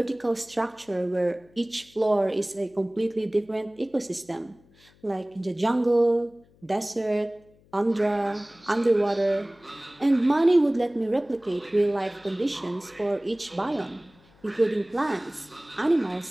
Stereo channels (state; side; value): noise; left; hum, 30 dB below the sound